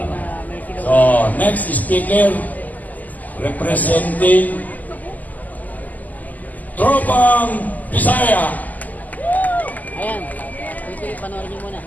lang. So, next speaker, representing Tropang Bisaya. Ayan, ito panoorin niyo muna.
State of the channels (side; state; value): right; late; 0.080 ms